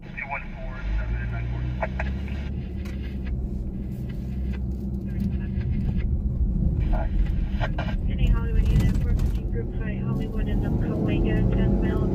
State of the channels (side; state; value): both; identical; correlation 1.00